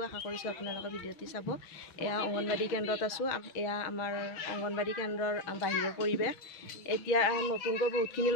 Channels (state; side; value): late; right; 6.2 ms